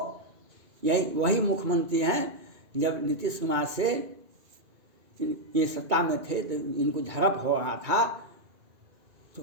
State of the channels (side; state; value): left; late; 2.2 ms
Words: यही वही मुख्यमंत्री हैं जब नीतीश कुमार से ये सत्ता में थे तो इनको झड़प हो रहा था तो